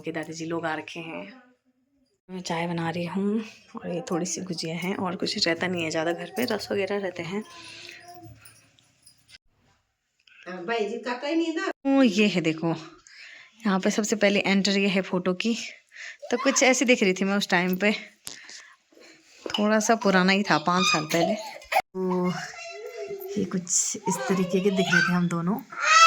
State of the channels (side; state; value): both; identical; correlation 1.00